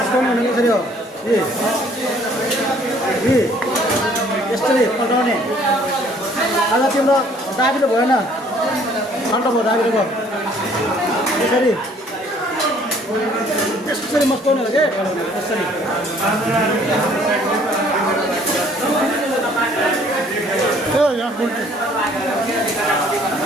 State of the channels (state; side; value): normal; both; correlation 0.59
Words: हुने कसरी हो यसरी पल्टाउने आज तिम्रो दाबिलो भएन ठन्डा भयो दाबिलो भयो यसरी यसरी मस्काउने हो कि यसरी